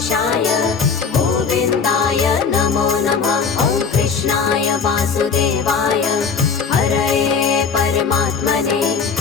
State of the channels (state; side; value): quieter; right; 5.7 dB